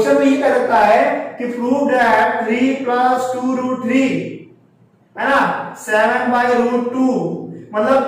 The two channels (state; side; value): identical; both; correlation 1.00